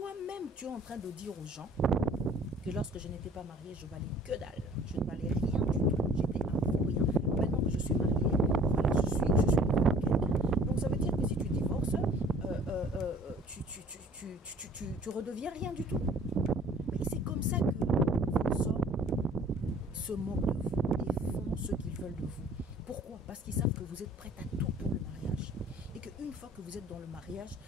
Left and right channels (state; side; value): normal; both; correlation 0.52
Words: tu es en train de dire aux gens que lorsque je n'étais pas mariée, je valais que dalle. Je ne valais rien du tout. J'étais un faux rien. Maintenant que je suis mariée, voilà, je suis quelqu'un. Donc, ça veut dire que si tu divorces, tu redeviens rien du tout. Mais c'est comme ça que vos hommes se moquent de vous et font ce qu'ils veulent de vous. Pourquoi? Parce qu'ils savent que vous êtes prête à tout pour le mariage. Et qu'une fois que vous êtes dans le mariage,